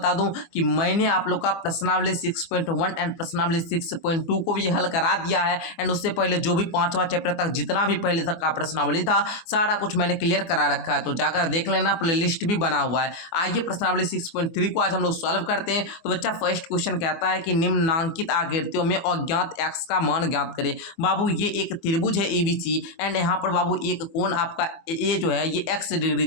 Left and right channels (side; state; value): right; late; 24 ms